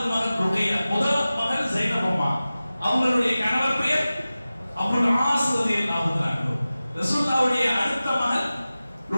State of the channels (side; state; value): both; inverted; correlation -0.96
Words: மகள் ருக்கையா, முதல் மகள் ஸைனப் அம்மா, அவங்களுடைய கணவர் பெயர் அபுல் ஆஸ் ரலியல்லாஹு தஆலா அன்ஹு. ரசூலுல்லாஹ்வுடைய அடுத்த மகள்